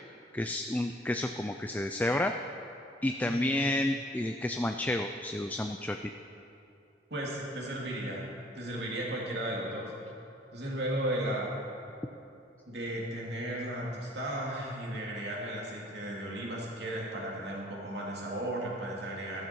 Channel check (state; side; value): normal; both; correlation 0.57